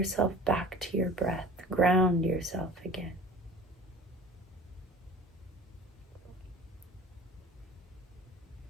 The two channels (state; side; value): normal; both; correlation 0.42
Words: back to your breath, ground yourself again.